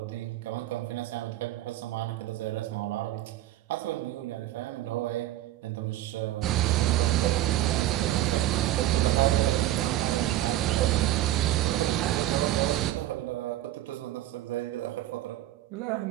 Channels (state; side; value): quieter; left; 14.3 dB